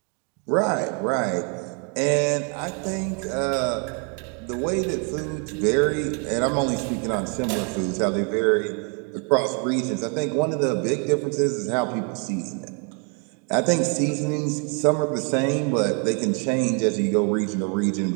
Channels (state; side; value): quieter; left; 38.0 dB